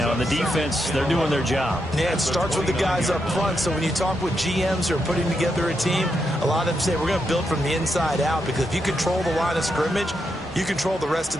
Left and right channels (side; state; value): both; normal; correlation 0.83